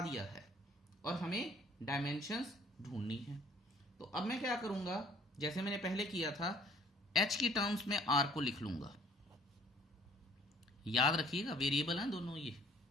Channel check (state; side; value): normal; both; correlation 0.57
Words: दिया है और हमें डायमेंशंस ढूंढनी है। तो अब मैं क्या करूंगा, जैसे मैंने पहले किया था, h की टर्म्स में r को लिख लूंगा। याद रखिएगा वेरिएबल हैं दोनों ये,